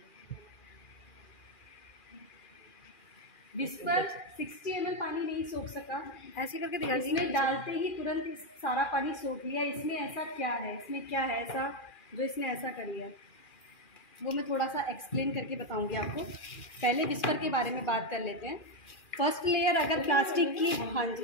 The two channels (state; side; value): late; right; 2.4 ms